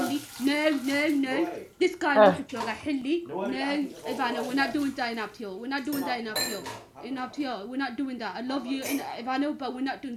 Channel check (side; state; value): both; identical; correlation 1.00